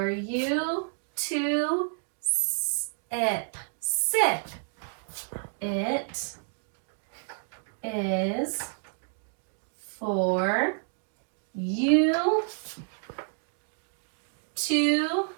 you to sip. Sip. It is for you to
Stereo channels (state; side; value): silent; left; digital silence